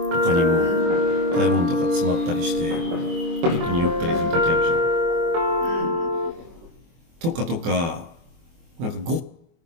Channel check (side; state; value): left; late; 24 ms